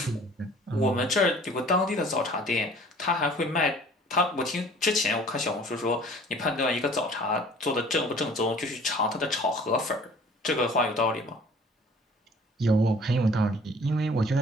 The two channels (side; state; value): both; normal; correlation 0.51